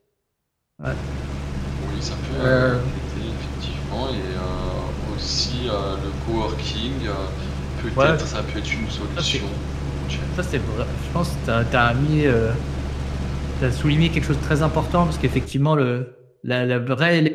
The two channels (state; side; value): identical; both; correlation 1.00